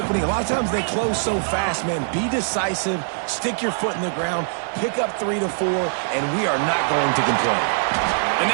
A lot of times they close so fast, man. Be decisive, stick your foot in the ground, pick up 3 to 4, and we are not going to complain. And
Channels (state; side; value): silent; left; digital silence